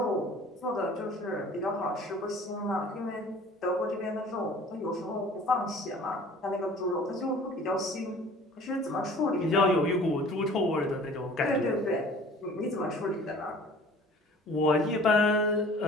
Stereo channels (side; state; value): both; normal; correlation 0.48